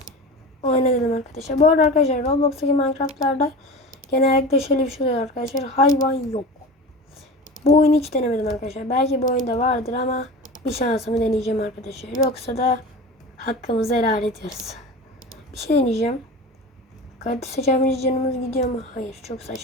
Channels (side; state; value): both; normal; correlation 0.32